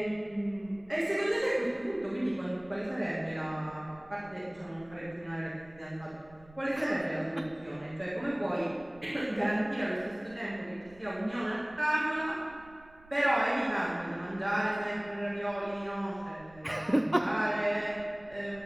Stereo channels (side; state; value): right; noise; rumble, 23 dB below the sound